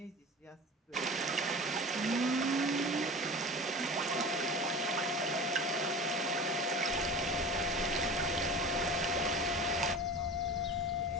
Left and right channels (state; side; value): normal; both; correlation 0.36